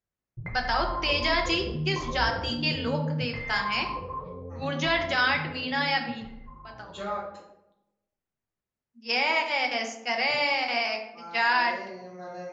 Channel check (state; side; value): identical; both; correlation 1.00